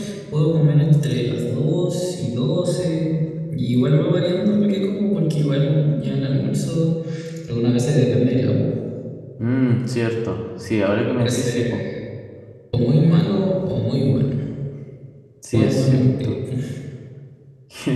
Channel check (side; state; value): both; identical; correlation 1.00